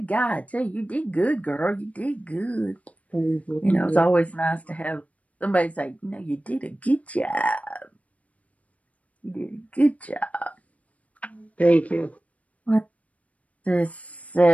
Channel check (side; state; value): right; late; 0.067 ms